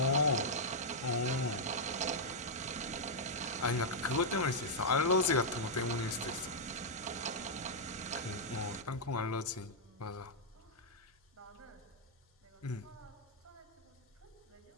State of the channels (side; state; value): both; normal; correlation -0.05